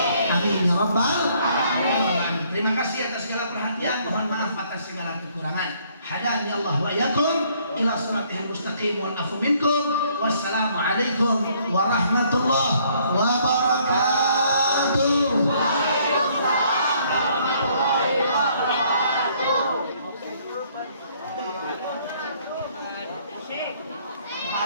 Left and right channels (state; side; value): inverted; both; correlation -0.64